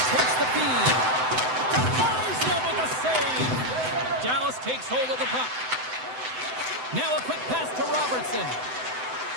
takes the feed. Defies them with a save. Dallas takes hold of the puck. Now a quick pass to Robertson.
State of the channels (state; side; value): late; left; 7.9 ms